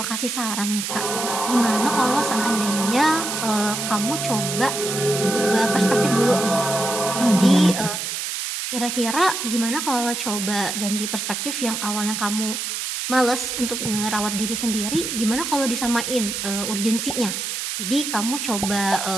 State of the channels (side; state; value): right; noise; hiss, 4 dB below the sound